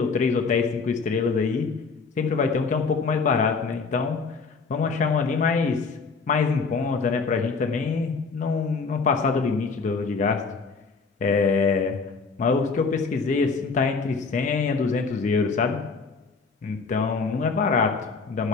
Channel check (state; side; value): quieter; right; 4.7 dB